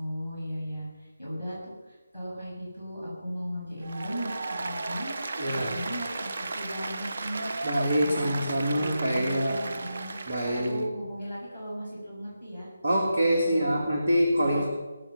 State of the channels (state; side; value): inverted; both; correlation -0.88